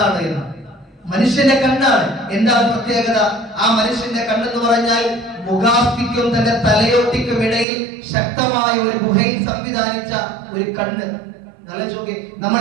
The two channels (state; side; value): drops out; left; at 7.7 s